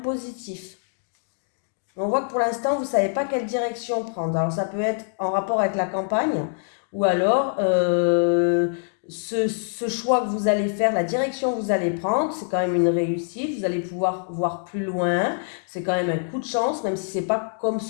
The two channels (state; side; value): silent; right; digital silence